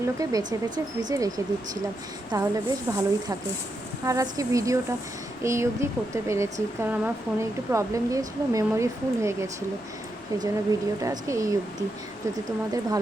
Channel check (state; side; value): normal; both; correlation 0.83